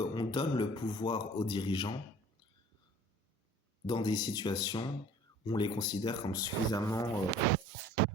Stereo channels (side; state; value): both; normal; correlation 0.50